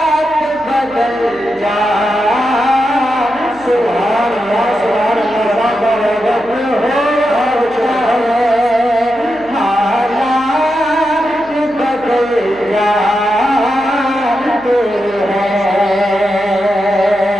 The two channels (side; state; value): right; noise; hum, 24 dB below the sound